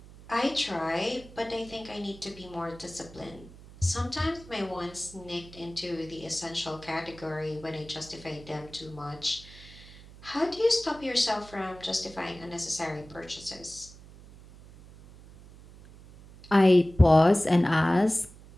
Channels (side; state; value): right; noise; hum, 20 dB below the sound